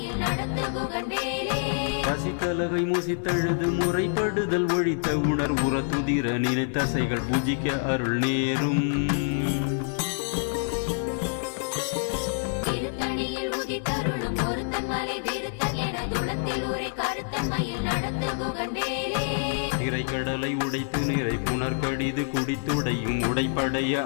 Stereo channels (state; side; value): silent; right; digital silence